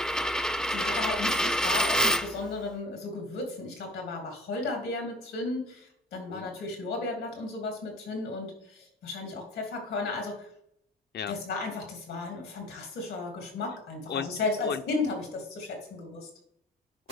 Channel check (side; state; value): both; normal; correlation 0.42